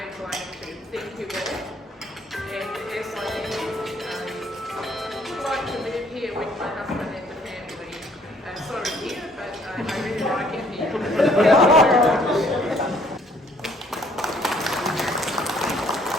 like to thank you all. And yes, I would like to live here with my husband and the family. Sorry here, but I really like it here.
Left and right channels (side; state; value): both; normal; correlation 0.62